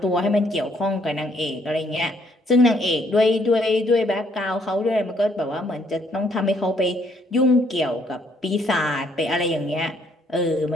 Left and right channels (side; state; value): both; normal; correlation 0.67